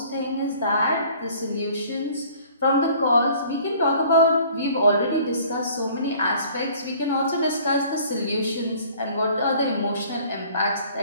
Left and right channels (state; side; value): inverted; both; correlation -0.53